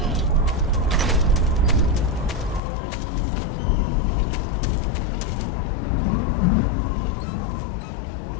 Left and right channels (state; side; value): drops out; right; at 2.6 s